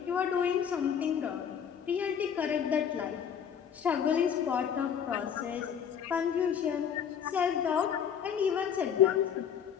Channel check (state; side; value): quieter; right; 8.0 dB